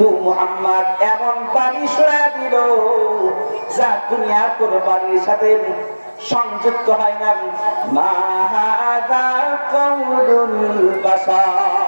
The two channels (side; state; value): both; inverted; correlation -1.00